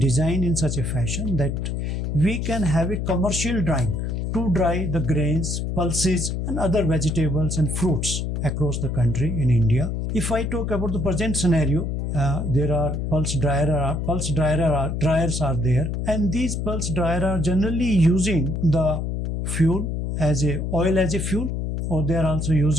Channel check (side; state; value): left; noise; hum, 2 dB below the sound